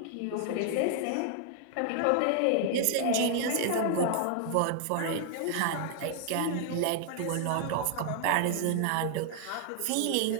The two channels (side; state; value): both; different; correlation 0.00